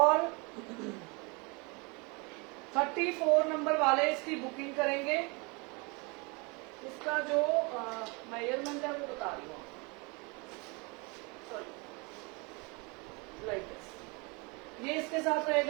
34 नंबर वाले इसकी बुकिंग करेंगे। इसका जो मेजरमेंट है वो बता रही हूँ, सॉरी, लाइक दिस। ये इसके साथ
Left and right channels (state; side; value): quieter; left; 29.7 dB